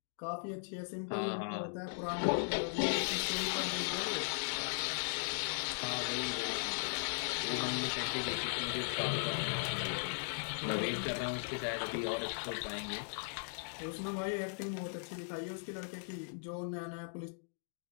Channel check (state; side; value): silent; right; digital silence